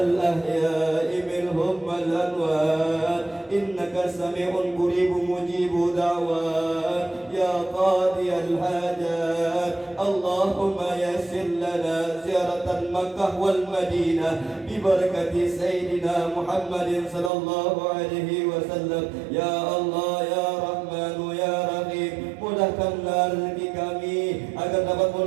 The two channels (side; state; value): left; drops out; at 17.3 s